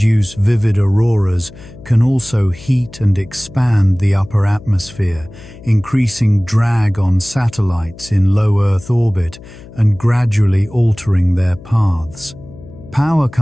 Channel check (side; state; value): left; noise; hum, 19 dB below the sound